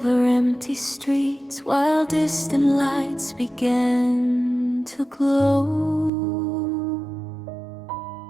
empty streets, while distant lights began to glow.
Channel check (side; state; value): left; drops out; at 6.1 s